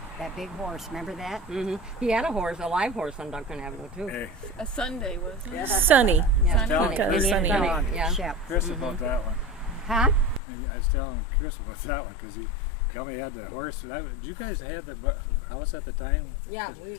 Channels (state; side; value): drops out; right; at 10.4 s